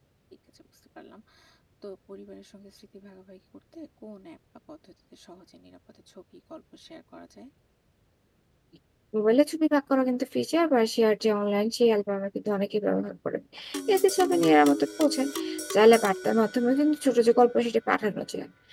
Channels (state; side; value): identical; both; correlation 1.00